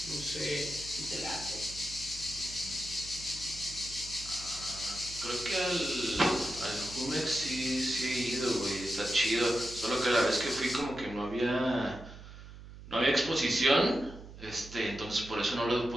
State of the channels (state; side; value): noise; right; hum, 15 dB below the sound